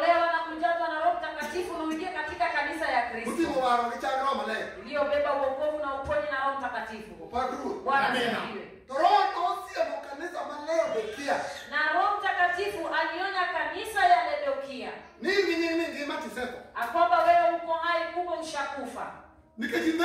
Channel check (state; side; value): identical; both; correlation 1.00